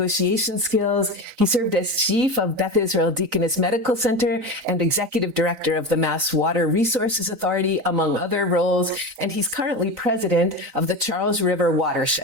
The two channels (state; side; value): late; left; 3.9 ms